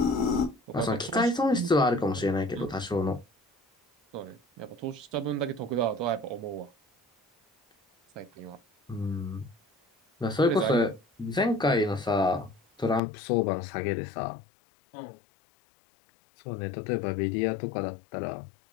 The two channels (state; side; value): drops out; right; at 13.0 s